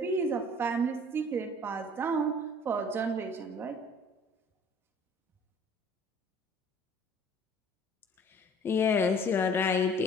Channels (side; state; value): both; normal; correlation 0.51